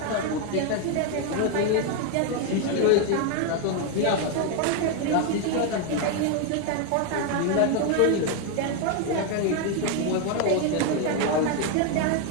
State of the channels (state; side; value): different; both; correlation 0.01